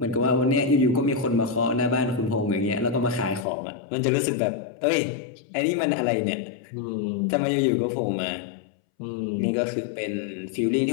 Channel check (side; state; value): right; drops out; at 3.5 s